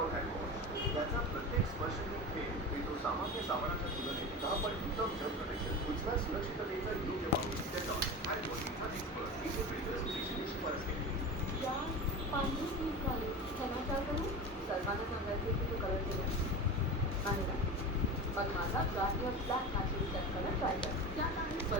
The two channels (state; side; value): normal; both; correlation 0.27